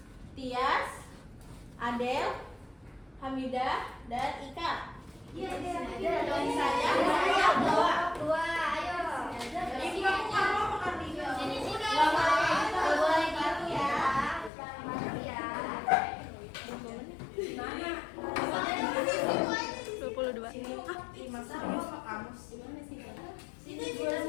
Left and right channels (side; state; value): right; drops out; at 14.5 s